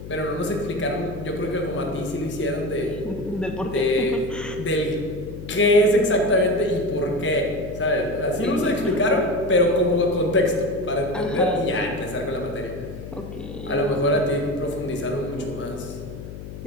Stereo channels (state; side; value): noise; left; hum, 11 dB below the sound